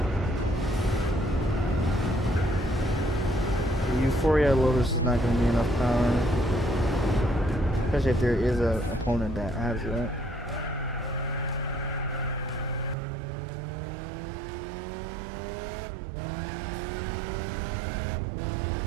The Euphoria Lotus is not going to be enough power. Especially if there is an opponent that has it.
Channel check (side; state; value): left; drops out; at 13.0 s